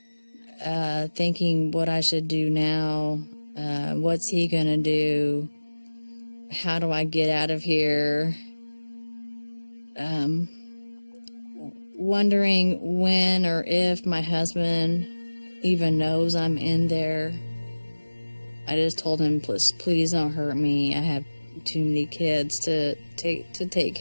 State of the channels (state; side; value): inverted; both; correlation -1.00